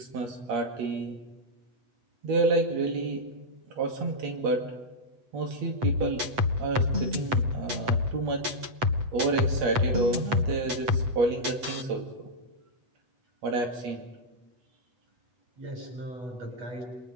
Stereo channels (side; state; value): left; late; 8.0 ms